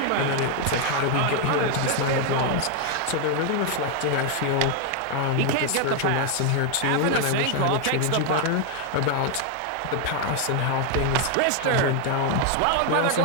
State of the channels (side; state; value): both; different; correlation 0.01